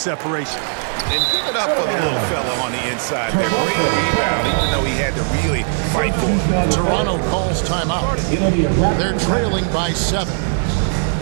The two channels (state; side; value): silent; left; digital silence